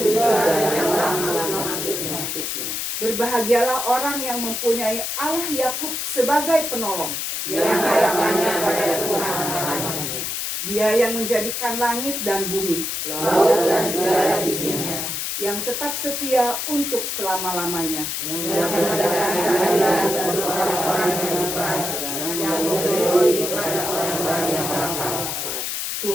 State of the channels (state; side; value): noise; left; hiss, 3 dB below the sound